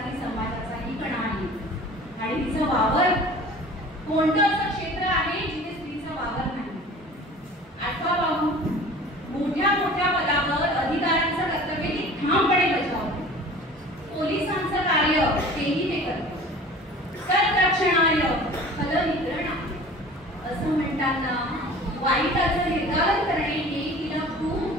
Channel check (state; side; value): normal; both; correlation 0.43